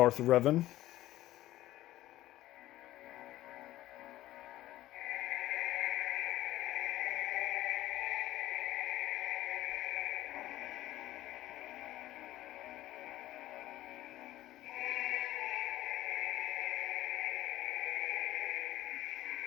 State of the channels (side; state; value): right; quieter; 15.2 dB